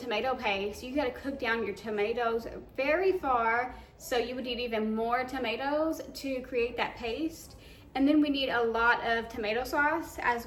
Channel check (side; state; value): both; identical; correlation 1.00